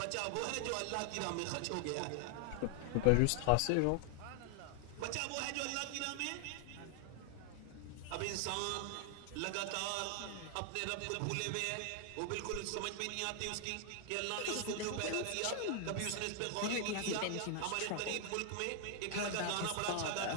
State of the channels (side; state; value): both; different; correlation 0.00